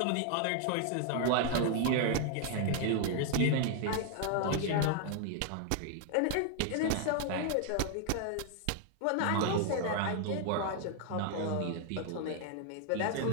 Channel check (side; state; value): both; different; correlation 0.00